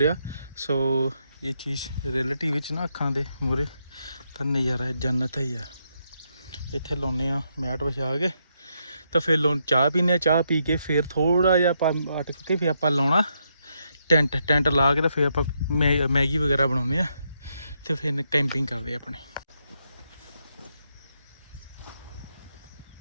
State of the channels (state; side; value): inverted; both; correlation -0.79